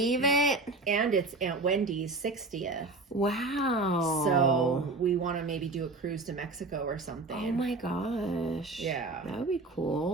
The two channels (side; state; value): left; quieter; 3.3 dB